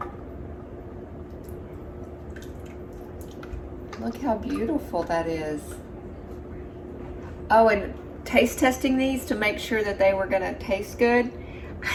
Look how beautiful that is. Oh, and taste testing these to make sure that they were gonna taste good.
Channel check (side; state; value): both; identical; correlation 1.00